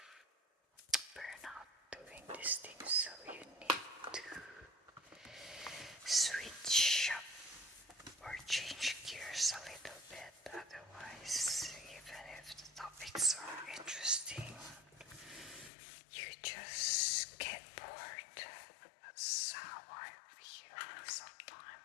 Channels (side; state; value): right; drops out; at 15.7 s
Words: burnout doing these things, so you need to switch up or change gears a little bit. Otherwise, even if the topics are interesting, you just get bored. That's how I feel